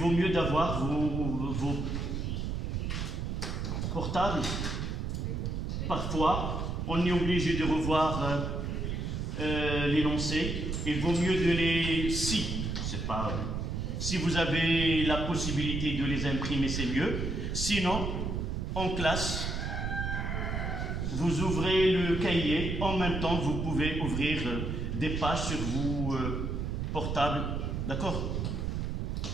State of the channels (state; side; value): noise; right; rumble, 2 dB below the sound